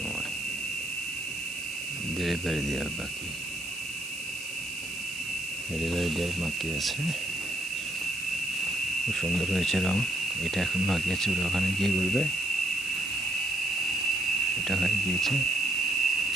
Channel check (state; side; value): noise; right; hiss, 12 dB below the sound